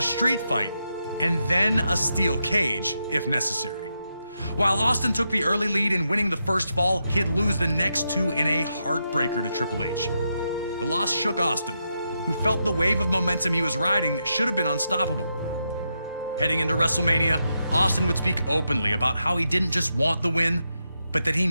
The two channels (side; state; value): both; inverted; correlation -0.84